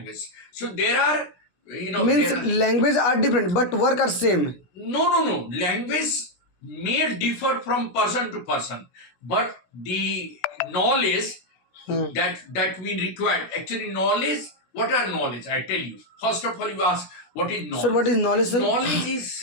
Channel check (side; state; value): right; late; 17 ms